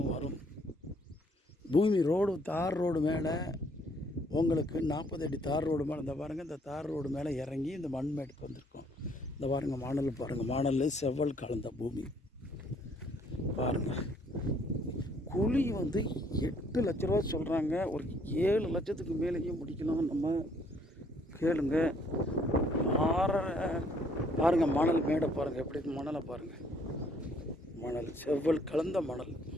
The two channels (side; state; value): both; normal; correlation 0.65